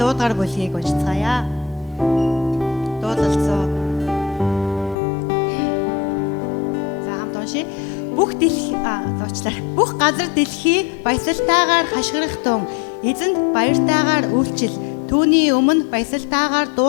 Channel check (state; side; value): drops out; right; at 5.0 s